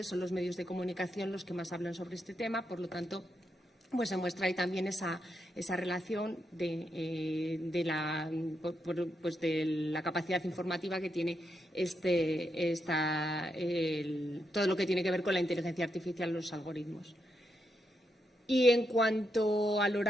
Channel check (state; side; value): normal; both; correlation 0.82